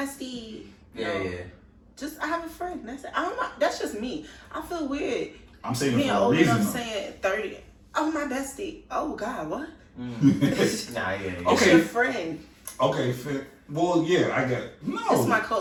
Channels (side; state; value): both; identical; correlation 1.00